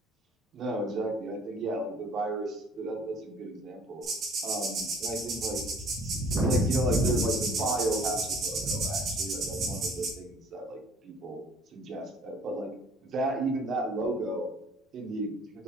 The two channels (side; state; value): both; normal; correlation 0.54